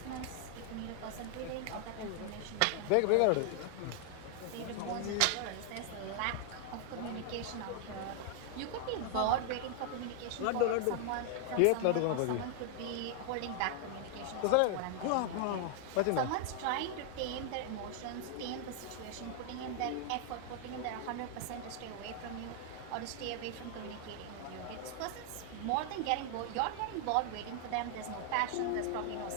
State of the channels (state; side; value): different; both; correlation 0.00